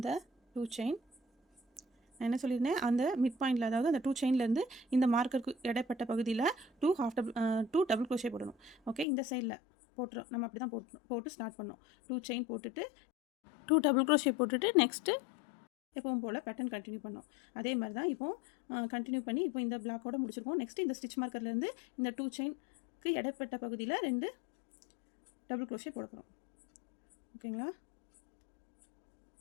2 செயின் நான் என்ன சொல்லியிருந்தேன், அந்த மிட் பாயிண்டில், அதாவது அந்த 2 செயின்லேருந்து இந்த மார்க்கருக்கு இடைப்பட்ட பகுதியில் 2 டபுள் க்ரோஷே போடணும். ஓகே, இந்த சைடில் போட்டுரும், நம்ம அப்படி தான் போட்டு ஸ்டார்ட் பண்ணோம். 2 செயின் போட்டுட்டு 2 டபுள் க்ரோஷே போட்டுட்டு நெக்ஸ்ட்டு எப்பவும் போல் பேட்டர்ன் கண்டினியூ பண்ணோம். அதே மாதிரி தான் இப்போது கண்டினியூ பண்ணி இப்போ இந்த பிளாக்கோட முடிச்சிருக்கோம். நெக்ஸ்ட்டு இந்த ஸ்டிச் மார்க்கர்லேருந்து இந்த 2 செயினுக்கு இடைப்பட்ட பகுதியில் 2 டபுள் க்ரோஷே போட போகிறோம். ஓகேங்களா?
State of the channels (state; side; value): drops out; right; at 9.1 s